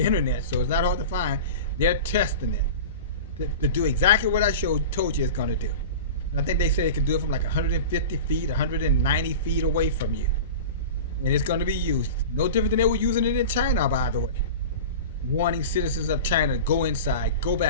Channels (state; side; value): inverted; both; correlation -0.32